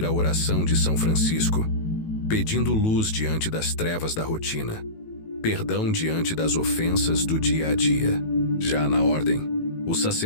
a oração de São Francisco, pedindo luz diante das trevas da rotina. perdão diante das ofensas do dia a dia. Já na ordem, o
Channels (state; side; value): late; right; 18 ms